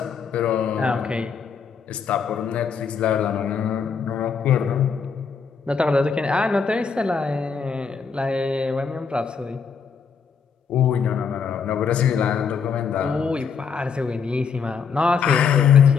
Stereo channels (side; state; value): right; quieter; 6.1 dB